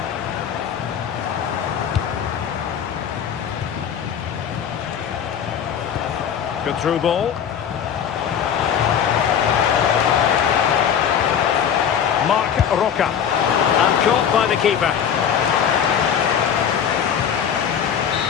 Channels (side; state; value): right; quieter; 8.3 dB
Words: Good through ball. Marc Roca. And caught by the keeper.